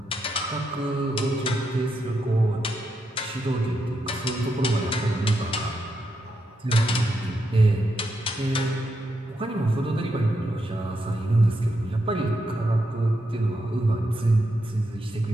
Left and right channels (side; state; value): both; normal; correlation 0.83